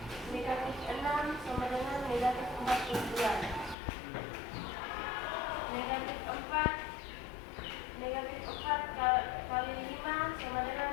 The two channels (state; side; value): drops out; right; at 3.8 s